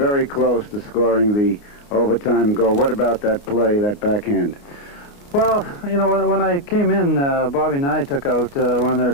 close to scoring the overtime goal. What about that play, that backhand? Well, you know, when I came in, Bobby and I took out one of their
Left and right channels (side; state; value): right; late; 29 ms